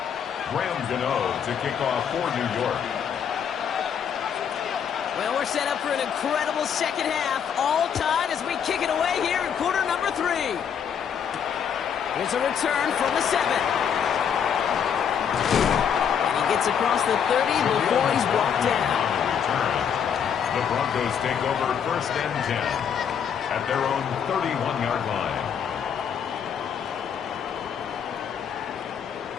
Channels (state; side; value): quieter; right; 7.9 dB